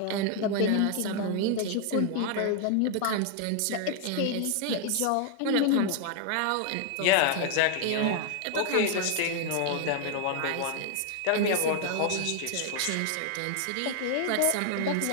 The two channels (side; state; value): both; different; correlation 0.00